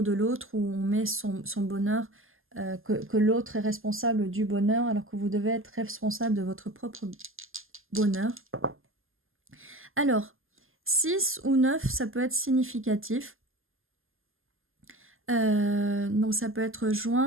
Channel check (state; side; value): late; left; 0.60 ms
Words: de l'autre, ou on met son bonheur, que l'autre est responsable du bonheur, alors que vous devez être responsable de votre propre bonheur. Alors, 6 ou 9, ça peut être significatif. Donc ça peut être